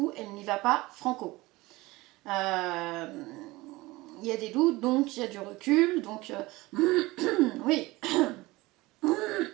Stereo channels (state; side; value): quieter; left; 20.7 dB